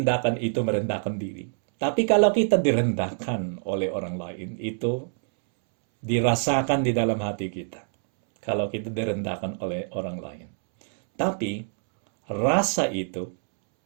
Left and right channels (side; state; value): left; silent; 61 dB below the other